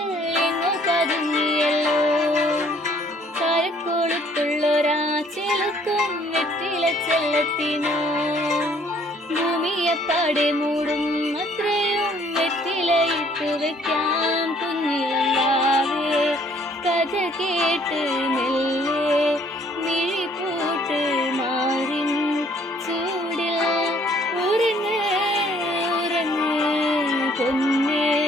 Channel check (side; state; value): both; normal; correlation 0.61